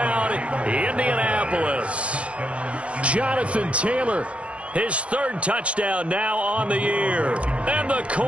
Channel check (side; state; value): left; late; 0.062 ms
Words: Indianapolis. Jonathan Taylor. His 3rd touchdown now on the year. And the